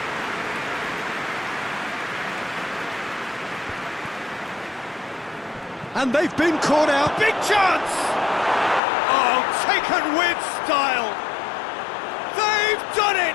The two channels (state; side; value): drops out; right; at 8.8 s